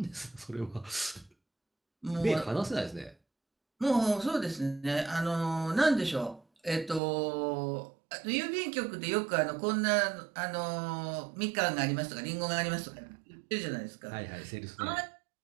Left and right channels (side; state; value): left; drops out; at 7.0 s